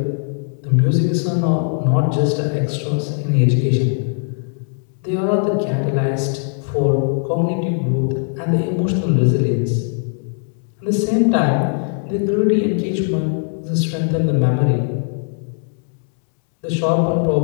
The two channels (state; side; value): silent; right; 66 dB below the other